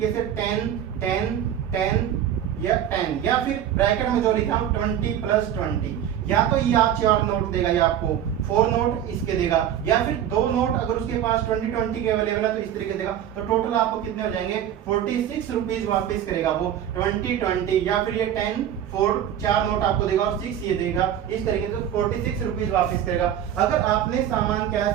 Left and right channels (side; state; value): left; quieter; 10.3 dB